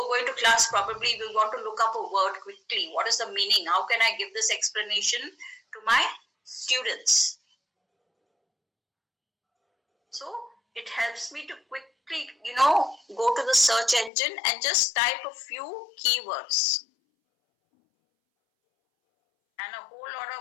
going to class, probably we want to look up a word quickly. What is the meaning? How can I give this explanation to my students? So it helps me to quickly, go to the search engine and just type a few keywords. And a whole lot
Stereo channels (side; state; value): right; drops out; at 14.1 s